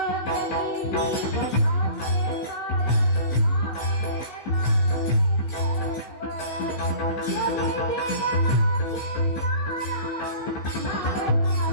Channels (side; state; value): right; late; 15 ms